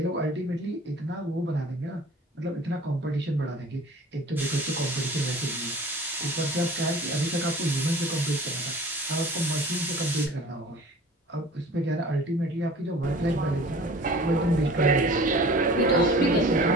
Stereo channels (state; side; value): normal; both; correlation 0.44